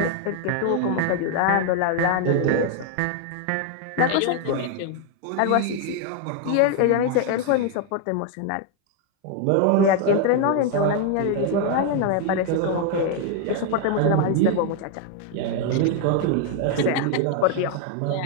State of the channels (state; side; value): different; both; correlation 0.00